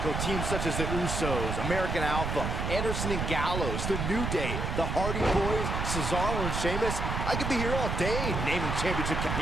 Teams such as the Usos, American Alpha, Anderson and Gallows, The New Day, the Hardy Boys, Cesaro and Sheamus. I could be here all day naming championship.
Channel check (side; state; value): right; noise; rumble, 2 dB below the sound